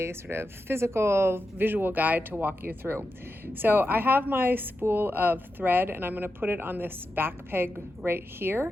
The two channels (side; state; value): both; normal; correlation 0.89